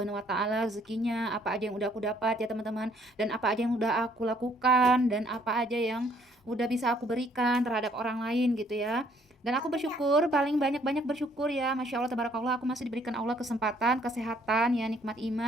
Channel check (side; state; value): both; normal; correlation 0.64